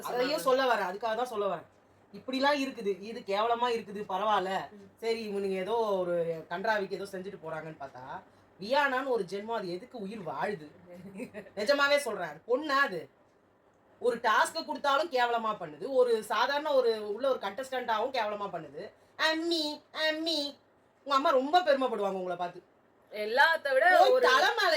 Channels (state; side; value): identical; both; correlation 1.00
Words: அதையும் சொல்ல வரேன், அதுக்காக தான் சொல்ல வரேன். இப்படிலாம் இருக்குது, இது கேவலமாக இருக்குது, பரவாயில்ல சரி இவனுங்க ஏதோ ஒரு கன்றாவிக்கு ஏதோ செஞ்சுட்டு போகிறாங்கன்னு பார்த்தா வியானான்னு ஒரு ஜென்மம் அது எதுக்கு உயிர் வாழுது? நிஜமாவே சொல்கிறேன். பொண்ணா அது ஒரு டாஸ்க்கை கொடுத்தாலும் கேவலமாக பண்ணுது, ஒரு சாதாரண ஒரு உள்ள ஒரு கண்டஸ்டண்ட்டாகவும் கேவலமாக பண்ணுது. அம்மி அம்மி உங்கள் அம்மா ரொம்ப பெருமைப்படுவாங்க உங்களை பார்த்து. எல்லாத்த விட ஒரு